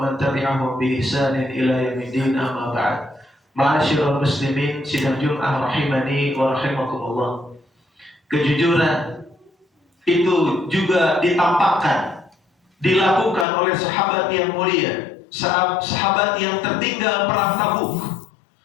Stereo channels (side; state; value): right; drops out; at 13.5 s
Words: man tabi'ahum bi ihsanin ila yaumiddin, amma ba'd. Ma'asyiral muslimin sidang Jumat rahimani wa rahimakumullah. Kejujuran itu juga ditampakkan, dilakukan oleh sahabat yang mulia, sahabat yang tertinggal perang Tabuk,